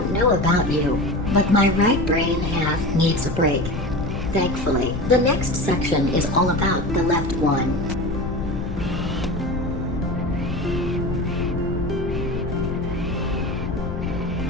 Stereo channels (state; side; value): noise; left; rumble, 6 dB below the sound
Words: know about you, but my right brain half needs a break. Thankfully, the next section is all about the left one.